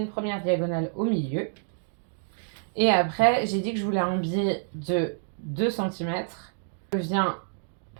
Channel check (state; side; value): silent; left; digital silence